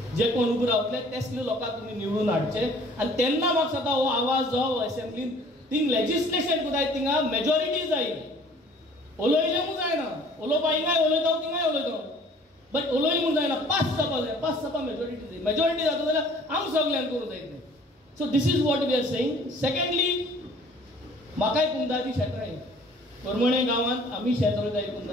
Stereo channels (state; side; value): normal; both; correlation 0.53